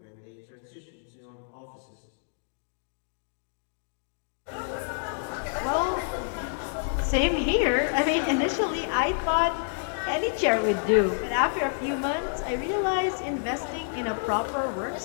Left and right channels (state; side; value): silent; right; digital silence